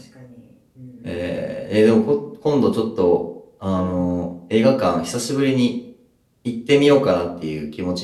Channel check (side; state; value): both; identical; correlation 1.00